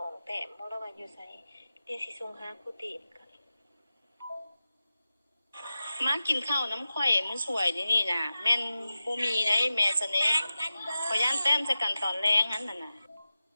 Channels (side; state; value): both; inverted; correlation -0.94